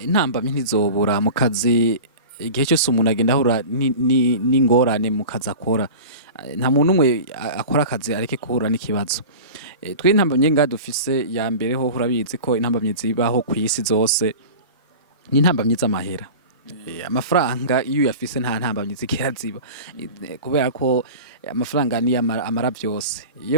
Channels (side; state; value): both; inverted; correlation -0.34